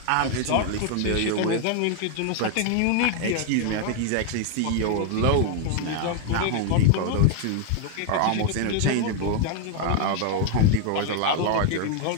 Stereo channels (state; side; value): different; both; correlation 0.00